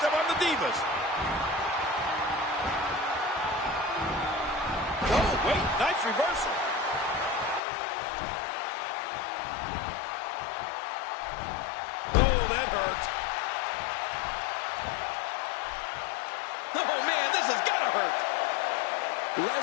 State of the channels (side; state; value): right; drops out; at 7.6 s